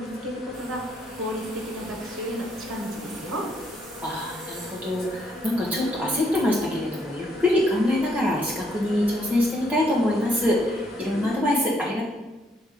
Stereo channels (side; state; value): both; normal; correlation 0.71